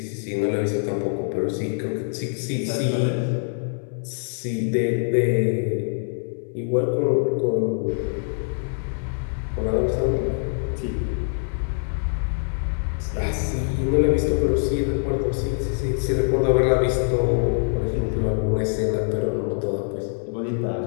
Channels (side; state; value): right; silent; 63 dB below the other